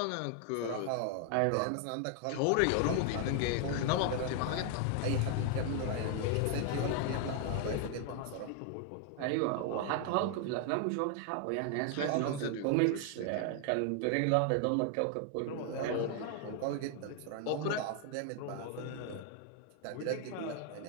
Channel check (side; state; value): both; different; correlation 0.00